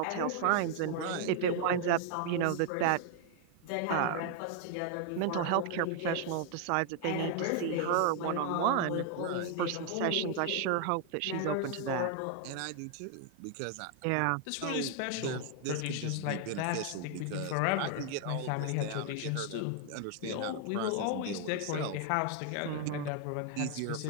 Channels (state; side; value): different; both; correlation 0.00